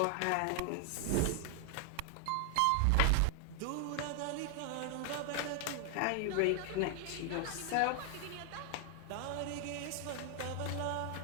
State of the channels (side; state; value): both; different; correlation 0.00